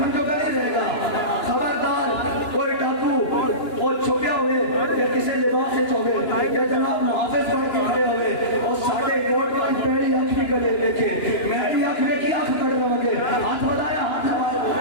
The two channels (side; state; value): right; late; 2.9 ms